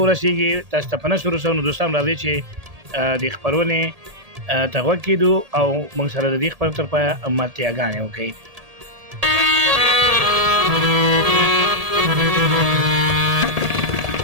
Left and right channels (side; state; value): left; late; 1.8 ms